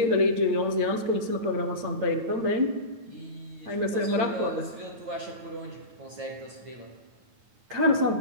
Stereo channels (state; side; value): late; left; 8.9 ms